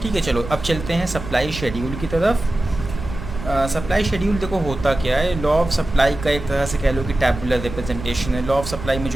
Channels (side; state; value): right; noise; rumble, 10 dB below the sound